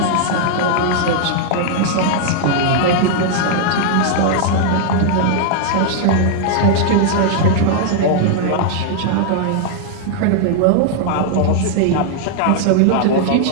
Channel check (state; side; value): different; both; correlation -0.01